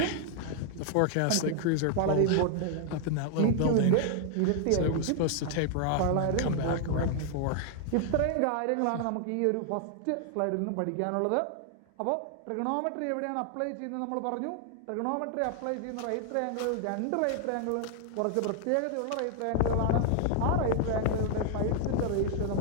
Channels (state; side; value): different; both; correlation 0.00